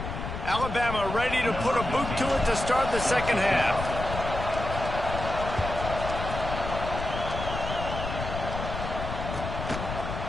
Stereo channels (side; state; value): left; noise; rumble, 6 dB below the sound